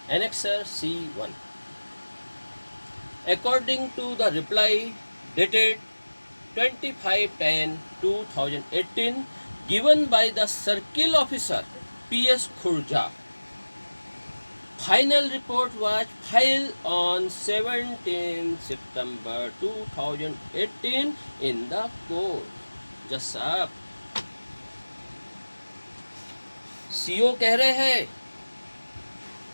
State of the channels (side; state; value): both; inverted; correlation -1.00